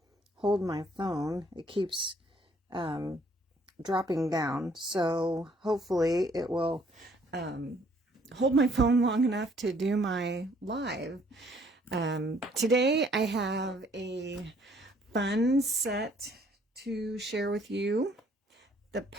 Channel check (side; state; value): both; normal; correlation 0.63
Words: hold my phone. It keeps dropping down. So hopefully it will hold my phone long enough to do my live. Today I have a fun set to share with you. The